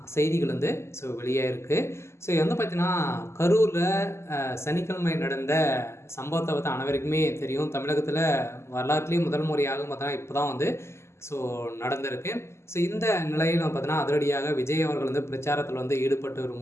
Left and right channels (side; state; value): right; late; 0.13 ms